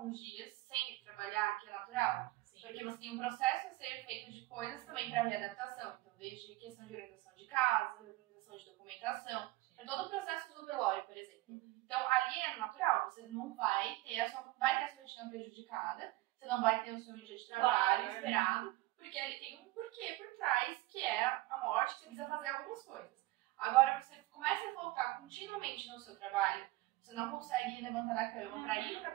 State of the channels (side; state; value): left; quieter; 18.7 dB